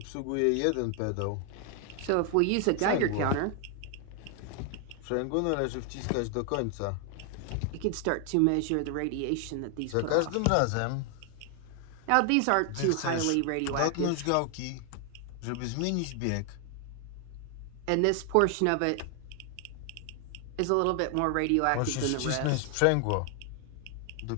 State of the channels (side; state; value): both; different; correlation 0.00